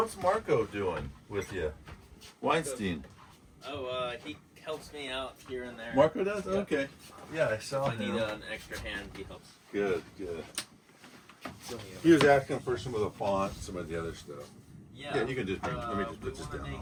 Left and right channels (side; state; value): both; identical; correlation 1.00